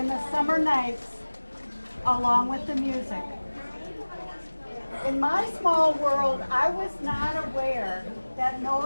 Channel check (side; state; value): both; inverted; correlation -1.00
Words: the summer nights along with the music. In my small world, I was not aware that